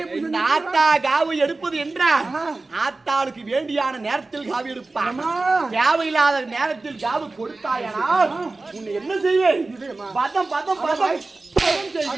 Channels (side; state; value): left; quieter; 3.4 dB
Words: இந்த ஆத்தா காவு எடுப்பது என்றால் ஆத்தாளுக்கு வேண்டியான நேரத்தில் காவு எடுப்பான். தேவையில்லாத நேரத்தில் காவு கொடுத்தாயனால் உன்னை என்ன செய்வேன்? பதம் பதம் பதம்